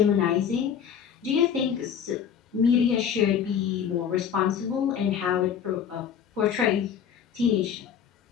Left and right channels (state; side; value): quieter; right; 8.1 dB